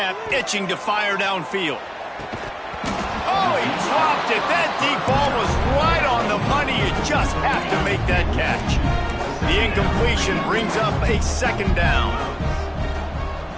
itching to fire downfield. Oh, he dropped it. That deep ball was right on the money. You just have to make that catch. The incompletion brings up a second down.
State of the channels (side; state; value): both; identical; correlation 1.00